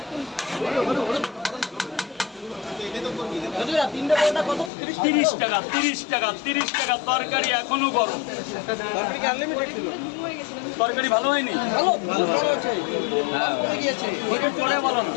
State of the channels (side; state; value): right; drops out; at 4.7 s